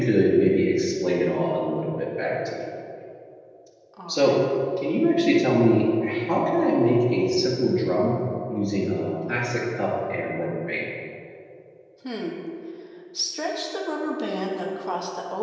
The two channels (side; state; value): both; identical; correlation 1.00